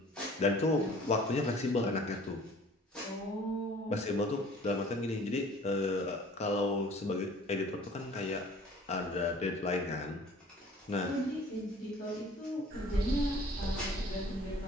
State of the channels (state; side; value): normal; both; correlation 0.51